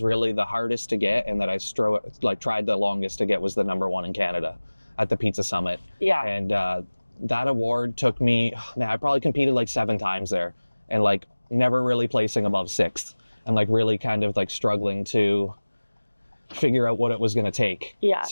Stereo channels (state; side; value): inverted; both; correlation -1.00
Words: really the hardest to get and that I tried the longest to get was the #1 in Canada. at the Pizza Summit. Yeah. And that award took me, man, I probably competed like 7 times there, and like never really placing above 6th, and like really kind of like struggling to figure out what it was going to take. Yeah.